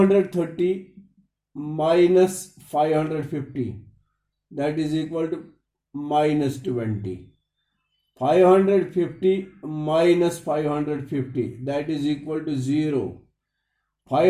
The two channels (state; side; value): identical; both; correlation 1.00